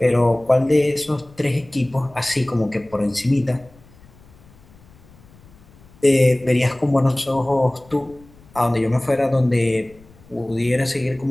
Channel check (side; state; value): left; noise; rumble, 26 dB below the sound